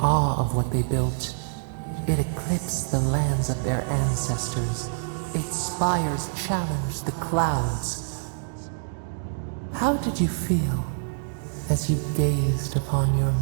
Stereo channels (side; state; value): left; silent; digital silence